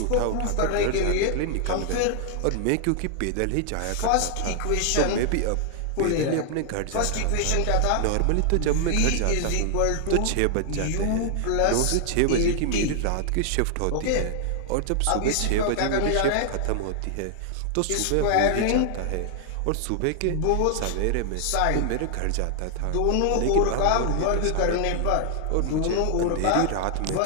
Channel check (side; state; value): both; different; correlation 0.00